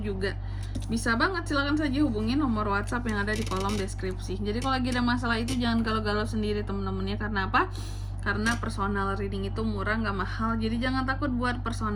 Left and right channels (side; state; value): both; identical; correlation 1.00